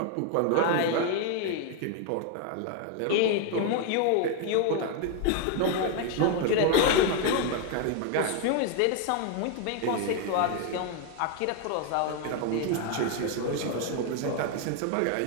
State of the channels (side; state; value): both; different; correlation 0.01